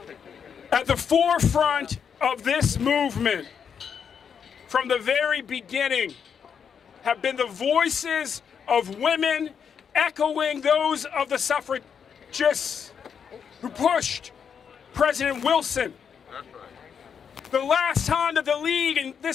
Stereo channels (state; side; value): quieter; right; 7.1 dB